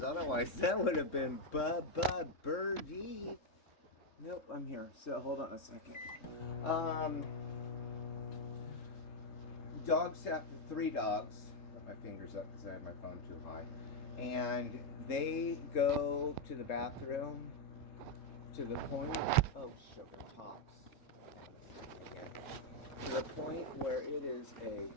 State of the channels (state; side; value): late; right; 3.7 ms